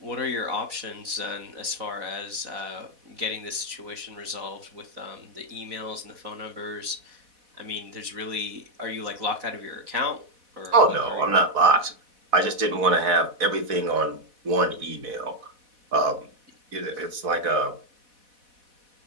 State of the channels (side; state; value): left; late; 4.1 ms